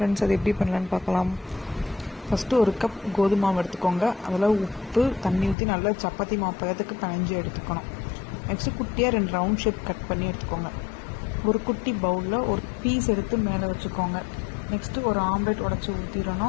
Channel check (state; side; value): drops out; right; at 5.6 s